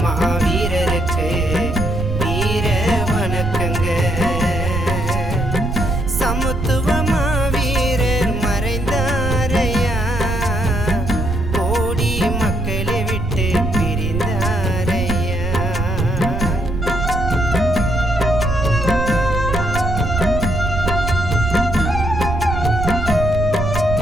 மாவீரருக்கு வீர வணக்கங்க. சமத்துவ மாவீரர் மறைந்தாரையா, கோடி மக்களை விட்டு பிரிந்தாரையா.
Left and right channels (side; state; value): right; noise; rumble, 3 dB below the sound